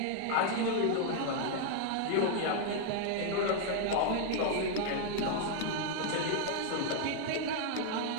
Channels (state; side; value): different; both; correlation 0.00